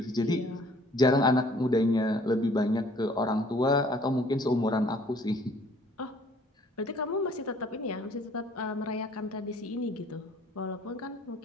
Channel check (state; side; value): normal; both; correlation 0.56